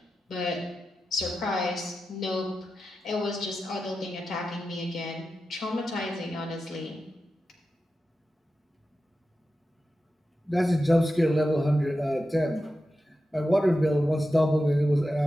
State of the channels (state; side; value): normal; both; correlation 0.91